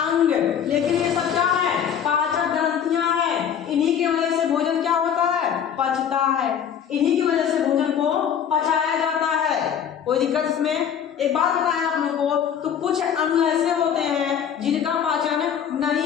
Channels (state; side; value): quieter; right; 8.4 dB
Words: अंग। लेकिन ये सब क्या है? पाचन ग्रंथियां हैं। इन्हीं की वजह से भोजन क्या होता है? पचता है। इन्हीं की वजह से भोजन को पचाया जाता है। कोई दिक्कत इसमें? एक बात बताएं आप लोगों को, तो कुछ अणु ऐसे होते हैं जिनका पाचन